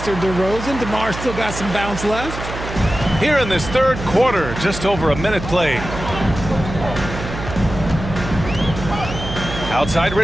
DeRozan. DeMar still got some bounce left. Here in this third quarter, just over a minute played. Outside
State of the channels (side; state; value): right; noise; hum, 8 dB below the sound